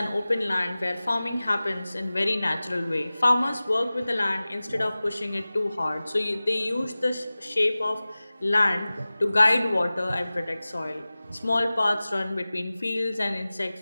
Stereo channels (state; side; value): inverted; both; correlation -0.98